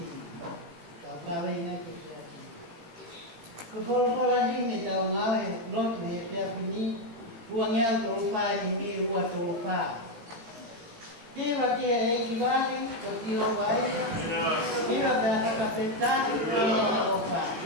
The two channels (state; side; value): late; left; 18 ms